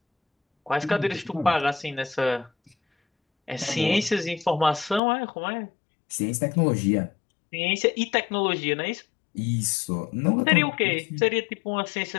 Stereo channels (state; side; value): drops out; right; at 5.0 s